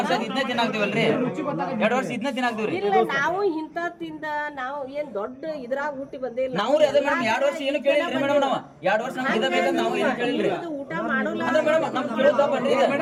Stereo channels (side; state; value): both; identical; correlation 1.00